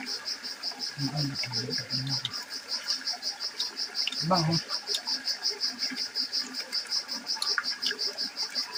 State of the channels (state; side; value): identical; both; correlation 1.00